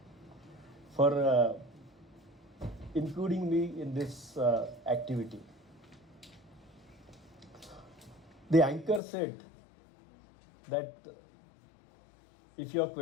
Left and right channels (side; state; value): right; drops out; at 9.0 s